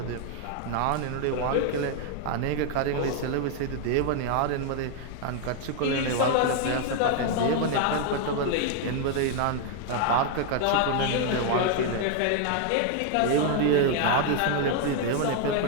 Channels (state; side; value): different; both; correlation 0.00